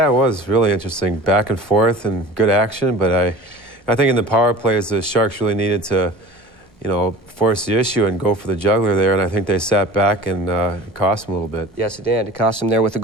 it was really interesting. Back and forth and good action, but I think in the power plays, the Sharks really needed to, force the issue and go for the juggler there, and I think they sat back and it cost them a little bit. Yes, it did. It cost them there with the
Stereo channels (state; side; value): normal; both; correlation 0.40